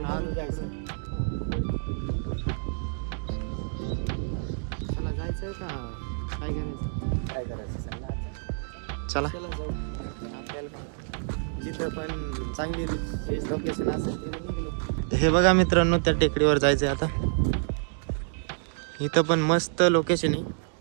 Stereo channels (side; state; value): left; silent; digital silence